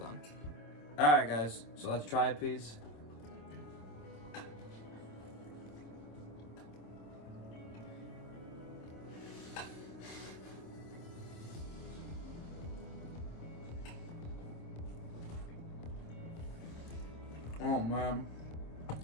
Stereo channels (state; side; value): late; right; 26 ms